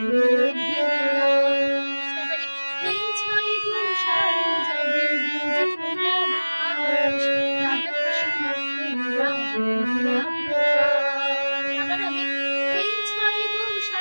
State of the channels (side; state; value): both; inverted; correlation -1.00